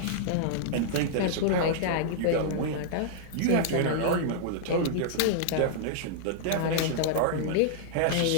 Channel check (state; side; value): different; both; correlation -0.01